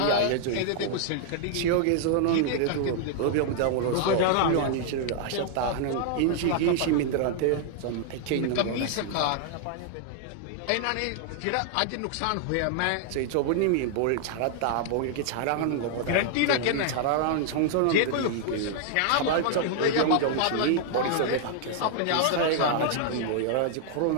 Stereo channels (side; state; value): both; different; correlation 0.00